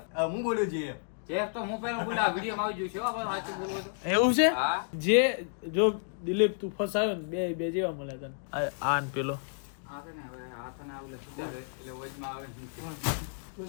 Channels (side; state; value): right; silent; digital silence